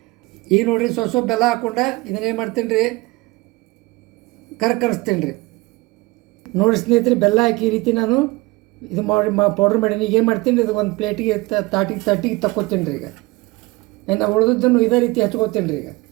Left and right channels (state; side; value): quieter; left; 22.6 dB